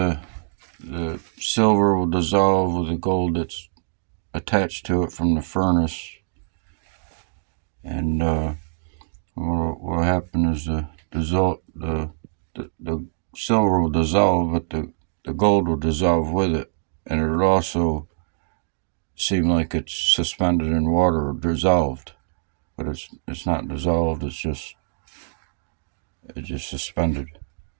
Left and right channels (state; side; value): silent; left; digital silence